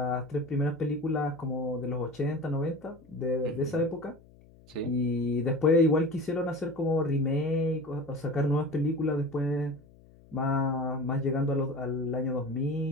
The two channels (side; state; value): left; noise; hum, 25 dB below the sound